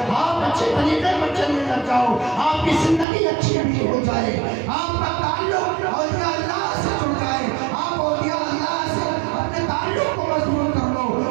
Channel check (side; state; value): left; drops out; at 3.1 s